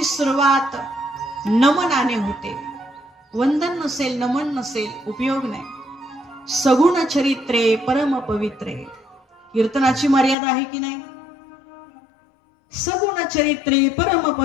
सुरुवात नमनाने होते. वंदन नसेल, नमन नसेल, उपयोग नाही. सगुण चरित्रे परम पवित्रे. कीर्तनाची मर्यादा आहे की नाही? सगुण चरित्रे परम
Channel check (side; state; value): right; drops out; at 10.4 s